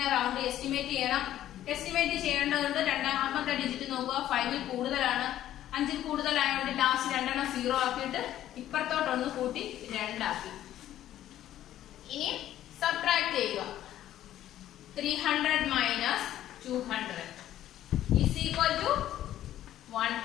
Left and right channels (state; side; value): quieter; right; 12.5 dB